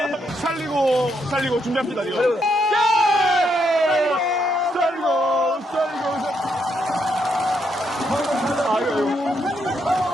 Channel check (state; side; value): normal; both; correlation 0.77